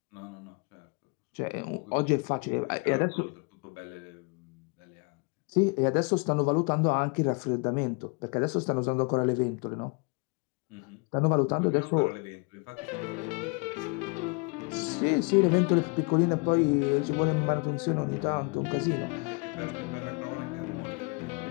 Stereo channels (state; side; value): quieter; right; 32.8 dB